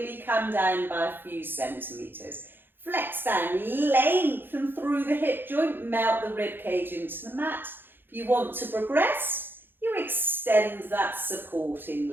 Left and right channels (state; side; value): late; left; 0.099 ms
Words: come down by a few centimetres. Flex down, lengthen through the hip joint, melt the rib cage into the mat. If you want to progress, you extend that